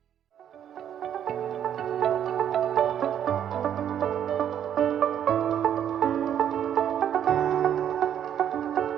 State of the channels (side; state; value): left; quieter; 9.7 dB